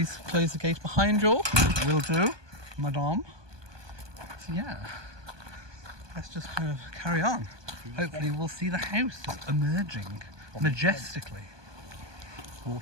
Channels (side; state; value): left; late; 1.2 ms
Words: close the gate behind you. Will do, madame. So yeah, let's just kind of carry on. Hopefully we'll see the house just emerging majestically.